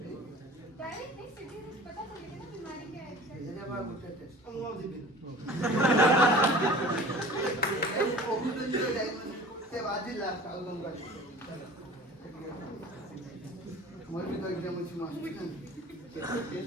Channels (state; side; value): normal; both; correlation 0.42